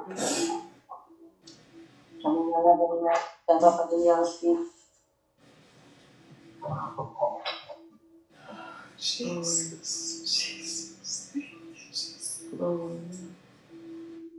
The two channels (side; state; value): both; identical; correlation 1.00